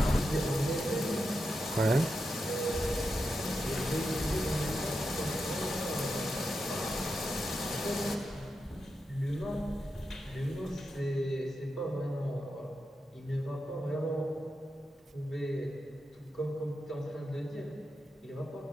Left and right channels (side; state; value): both; normal; correlation 0.88